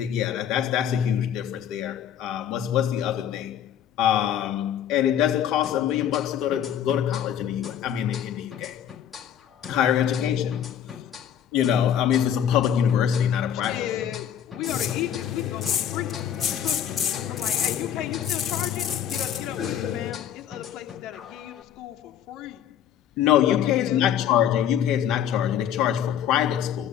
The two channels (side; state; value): right; quieter; 9.7 dB